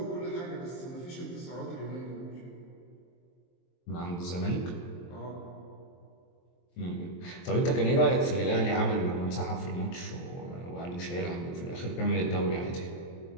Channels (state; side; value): late; right; 23 ms